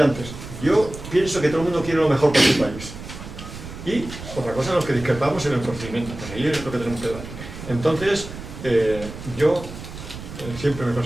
antes, yo pienso que todo el mundo quiere lo mejor para su país. Y otra cosa, los que discrepamos en el procedimiento, pues ahí es lo que tenemos que debatir. Entonces, yo siempre me he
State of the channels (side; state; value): right; noise; rumble, 12 dB below the sound